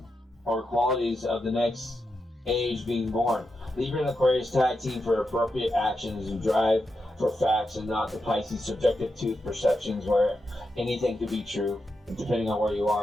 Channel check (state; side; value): normal; both; correlation 0.87